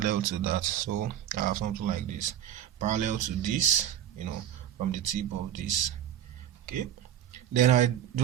to that. So I have something like this, parallel to this, from the tip of this. Okay, then I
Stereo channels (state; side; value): quieter; left; 10.8 dB